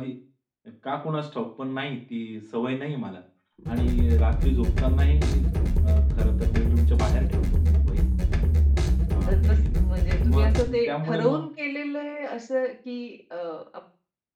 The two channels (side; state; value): both; identical; correlation 1.00